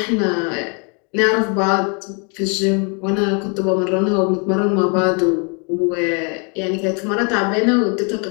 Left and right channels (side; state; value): right; quieter; 35.9 dB